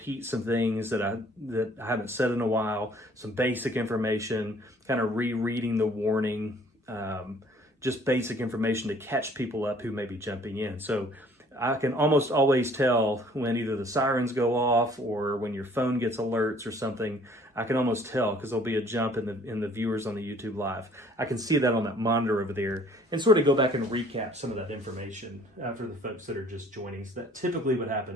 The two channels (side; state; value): both; normal; correlation 0.56